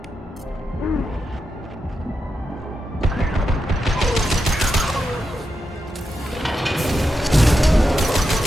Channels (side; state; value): both; normal; correlation 0.87